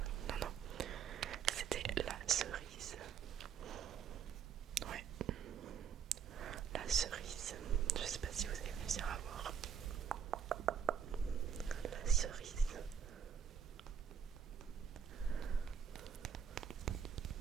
Non, non, c'était la cerise. Ouais, la cerise. Je sais pas si vous allez réussir à voir. La cerise.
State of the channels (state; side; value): quieter; left; 7.5 dB